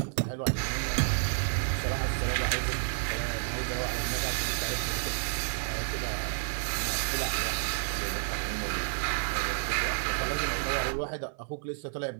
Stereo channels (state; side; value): silent; left; 57 dB below the other